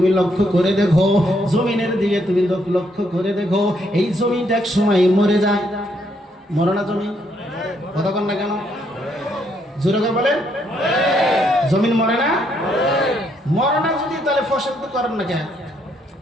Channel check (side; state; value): both; normal; correlation 0.73